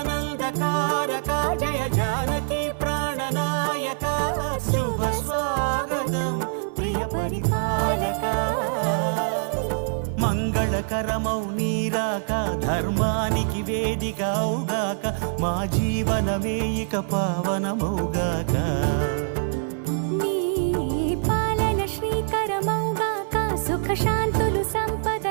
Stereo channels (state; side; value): silent; left; digital silence